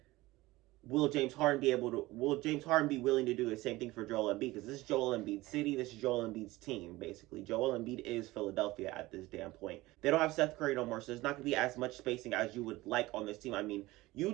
will James Harden be willing to do the same thing for Joel Embiid? Because this is Joel Embiid's city, this is Joel Embiid's team, basically. Joel Embiid is Philadelphia at this damn point. They don't have Seth Curry no more, so there's not going to be as much spacing as you would like on this team. I mean, you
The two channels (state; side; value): quieter; left; 19.1 dB